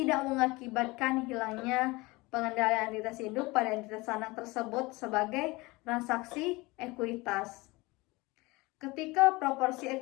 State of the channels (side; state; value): right; quieter; 22.9 dB